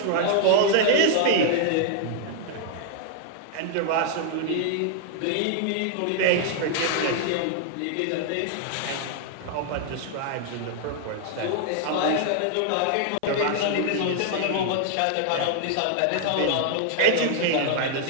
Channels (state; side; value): different; both; correlation -0.01